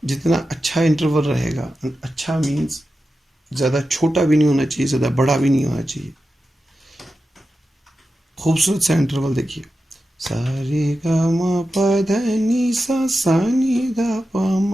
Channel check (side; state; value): both; normal; correlation 0.91